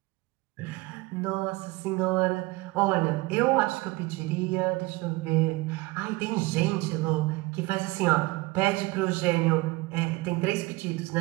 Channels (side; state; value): left; quieter; 22.3 dB